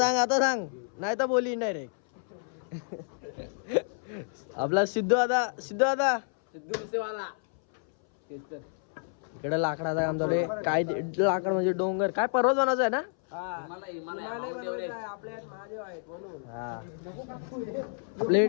सांग नाही तर बोली डायरेक्ट. आपला सिद्धू दादा इकडे लाकडाचा काम चालू आहे. काय लाकड म्हणजे डोंगर काय पर्वत बनायचं आहे ना. आपले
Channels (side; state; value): right; silent; 58 dB below the other